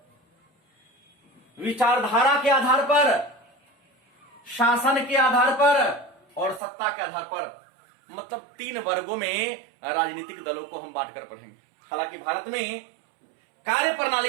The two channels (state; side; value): drops out; left; at 6.6 s